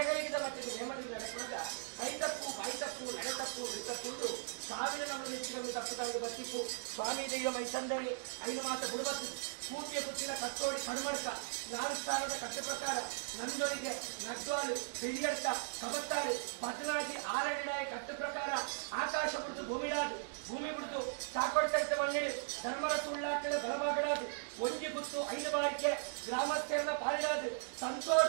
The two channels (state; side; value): silent; left; digital silence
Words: ಮಟ್ಟಿಗೆ ನೇಮನೇಡಿ ನಡೆಸುವಾಗ ಕೈ ತಪ್ಪು ಬಾಯಿ ತಪ್ಪು ನಡೆ ತಪ್ಪು ತಪ್ಪುಂಡು ಸಾವಿರ ನಮ್ಮ ನೆಚ್ಚಿನ ತಪ್ಪುದಾಗಿ ಬರ್ತಿಪ್ಪು ಸ್ವಾಮಿ ದೈವ ಮೈಸಂದೆಗೆ ಐದು ಮಾತ ಬುಡಬತ್ತು ಕೂತಿಯ ಕುತ್ತಿನ ಕತ್ತೋಡಿ ಕಣ್ಮಡ್ಕ 4 ಸ್ಥಾನದ ಕಟ್ಟ ಪ್ರಕಾರ ನಂದೊಳಿಗೆ ನಗ್ವಾಲು ಬೆಳಿಯಡ್ಕ ಕಬತ್ತಾಳು ಬದಲಾಗಿ ಆರಡಿಡಾಯಿ ಕಟ್ಟ ಪ್ರಕಾರ ಆಕಾಶ ಬಿಡ್ತು ಭೂಮಿಡಾದು ಭೂಮಿ ಬಿಡ್ತು ಚಾಕೊಡ್ತೈತೆ ಮಣ್ಣಿಡಿ ಧರ್ಮರ ಸುಳ್ಳಾಟದ ಬಲಭಾಗಡಾದು ಒಂಜಿ ಗುತ್ತು 5 ಬಾರಿಗೆ ಗ್ರಾಮಸ್ಥರ ಪಾಲಿಡಾದು